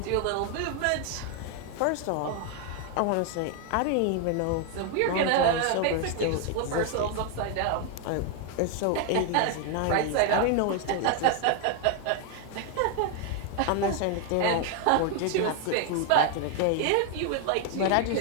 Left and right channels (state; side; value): different; both; correlation 0.00